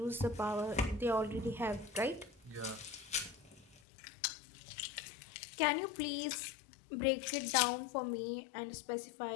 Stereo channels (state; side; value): drops out; right; at 3.8 s